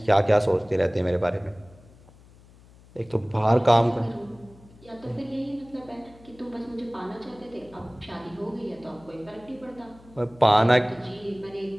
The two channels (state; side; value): noise; left; hum, 24 dB below the sound